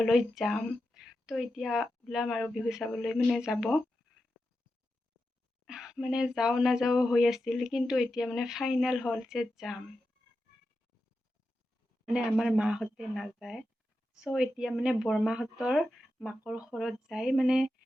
যাম। তো এতিয়া ওলাম আৰু বিহু চাবলৈ যাব। যাওঁ নাযাওঁ হৈ আছিল, কিন্তু এতিয়া ফাইনেল হ'ল যে যাম। আমাৰ মাহঁতে নাযায়। চ' এতিয়া বৰমাহঁতৰ মাকৰ ঘৰত যাই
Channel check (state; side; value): normal; both; correlation 0.89